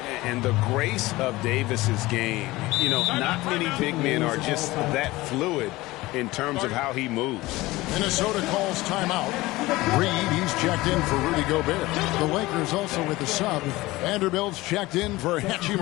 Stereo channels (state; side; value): quieter; right; 19.5 dB